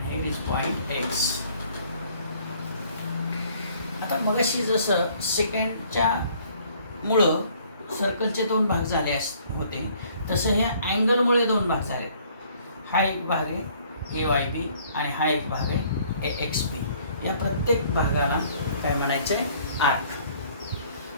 here is point X. आता मगाशी जसं सेकंडच्या मुळं सर्कलचे 2 भाग झाले होते तसं ह्या अँगलमुळे 2 भाग झाले. हा एक भाग आहे AYB आणि हा एक भाग आहे AXB. या प्रत्येक भागाला काय म्हणायचं आहे, आर्क.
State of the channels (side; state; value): both; inverted; correlation -0.59